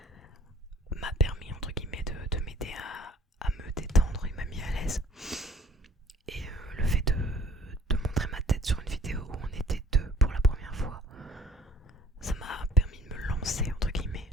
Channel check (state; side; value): normal; both; correlation 0.55